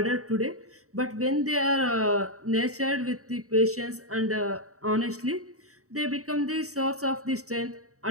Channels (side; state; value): left; late; 0.65 ms